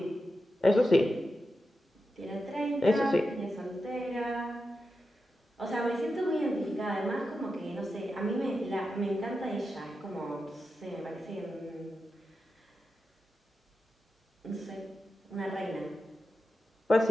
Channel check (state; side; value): normal; both; correlation 0.90